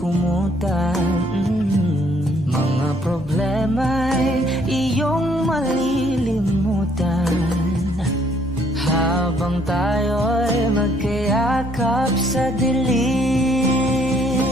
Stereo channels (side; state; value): both; normal; correlation 0.65